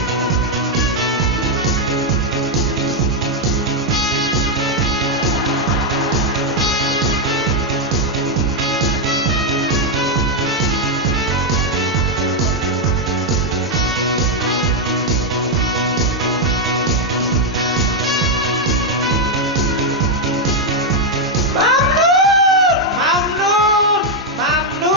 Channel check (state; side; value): normal; both; correlation 0.01